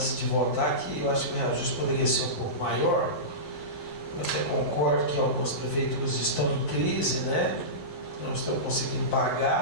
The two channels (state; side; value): late; right; 11 ms